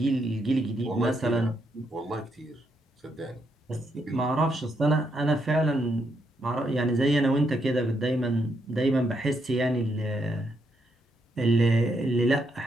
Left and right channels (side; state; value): both; normal; correlation 0.78